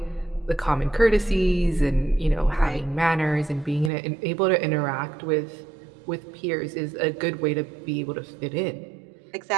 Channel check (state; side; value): drops out; left; at 3.9 s